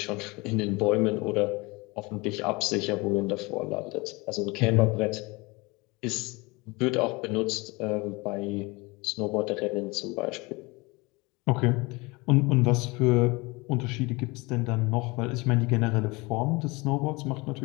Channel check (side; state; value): right; quieter; 25.0 dB